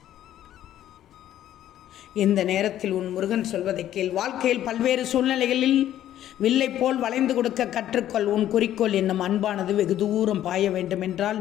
இந்த நேரத்தில் உன் முருகன் சொல்வதை கேள். வாழ்க்கையில் பல்வேறு சூழ்நிலைகளில் வில்லை போல் வளைந்து கொடுக்க கற்றுக்கொள். உன் குறிக்கோள் என்னும் அன்பானது வெகு தூரம் பாய வேண்டுமென்றால்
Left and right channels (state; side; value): quieter; right; 12.0 dB